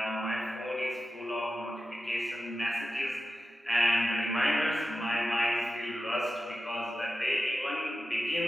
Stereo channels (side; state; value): both; normal; correlation 0.93